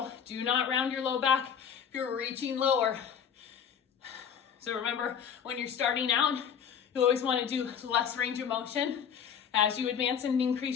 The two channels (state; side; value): quieter; right; 8.0 dB